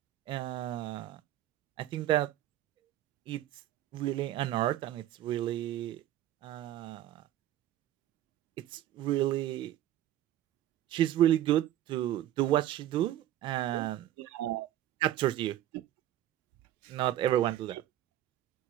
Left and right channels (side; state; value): left; quieter; 12.9 dB